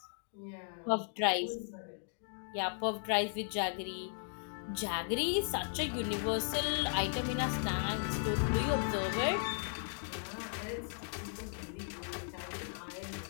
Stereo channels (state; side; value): silent; right; digital silence